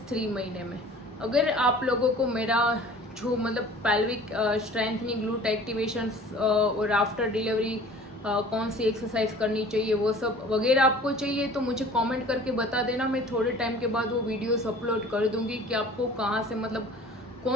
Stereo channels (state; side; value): normal; both; correlation 0.46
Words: 3 महीने में। अगर आप लोगों को मेरा जो मतलब पेल्विक स्ट्रेंथनिंग, ग्लूट एक्टिवेशन और आफ्टर डिलीवरी कौन सी एक्सरसाइज करनी चाहिए वो सब वगैरह आपको चाहिए तो मुझे कमेंट करके बता देना। मैं थोड़े टाइम के बाद वो वीडियोस अपलोड कर दूंगी कि आपको कहाँ से, मतलब